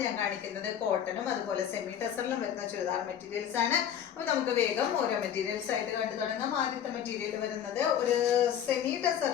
ഞാൻ കാണിക്കുന്നത് കോട്ടണും അതുപോലെ സെമി ടെസറിലും വരുന്ന ചുരിദാർ മെറ്റീരിയൽസ് ആണ്. അപ്പോൾ നമുക്ക് വേഗം ഓരോ മെറ്റീരിയൽസ് ആയിട്ട് കണ്ടു തുടങ്ങാം. ആദ്യത്തെ മെറ്റീരിയൽ വരുന്നത് ഒരു സെമി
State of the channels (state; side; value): quieter; right; 9.4 dB